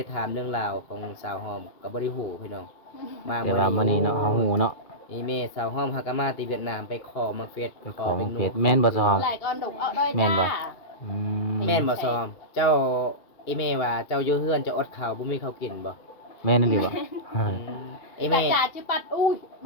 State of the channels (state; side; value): late; right; 2.3 ms